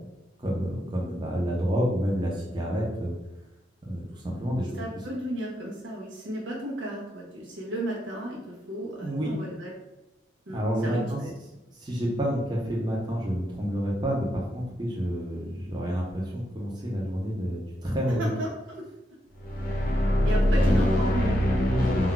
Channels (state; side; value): normal; both; correlation 0.82